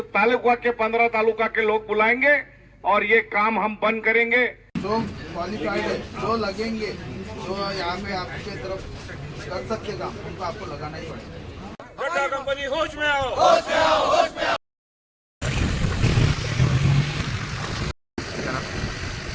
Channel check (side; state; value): both; identical; correlation 1.00